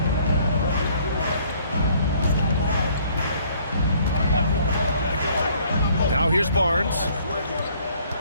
Now here's Barnes.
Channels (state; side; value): inverted; both; correlation -0.61